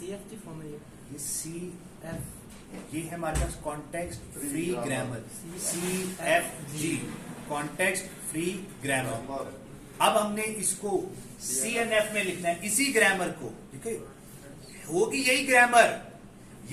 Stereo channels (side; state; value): both; identical; correlation 1.00